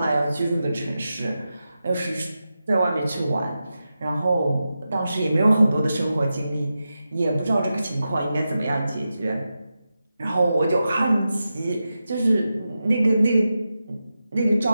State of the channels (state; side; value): inverted; both; correlation -0.91